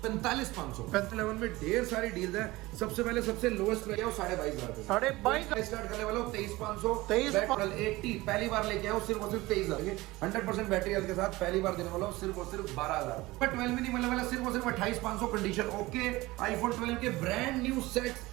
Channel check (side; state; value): left; quieter; 19.9 dB